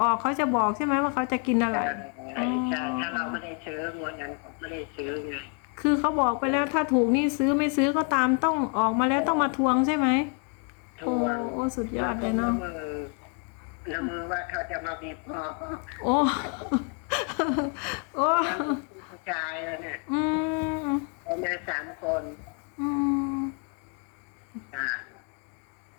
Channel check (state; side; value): quieter; right; 38.0 dB